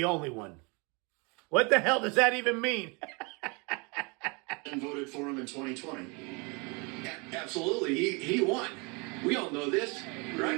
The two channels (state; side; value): quieter; left; 30.2 dB